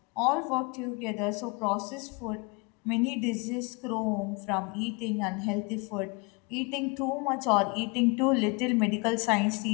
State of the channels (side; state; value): right; quieter; 29.4 dB